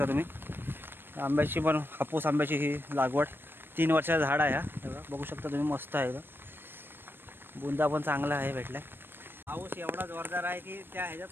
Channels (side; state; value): left; late; 0.099 ms